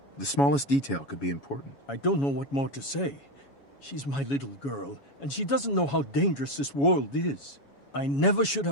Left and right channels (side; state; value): right; late; 7.2 ms